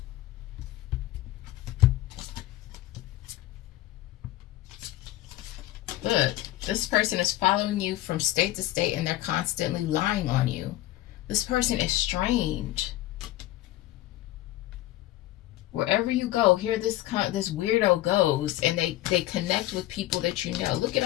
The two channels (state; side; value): quieter; right; 15.8 dB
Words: This person is following you from state to state and they're constantly lying on you. This person is strange. Wherever you go, here this weirdo goes, and they connect with people that you know. Look at